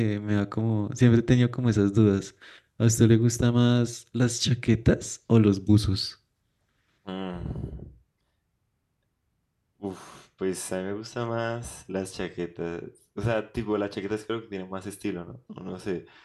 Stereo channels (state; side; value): identical; both; correlation 1.00